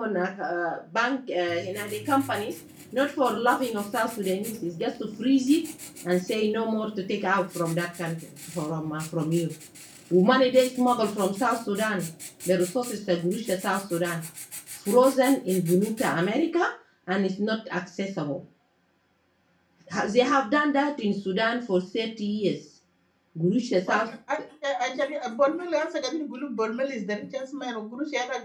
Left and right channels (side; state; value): both; identical; correlation 1.00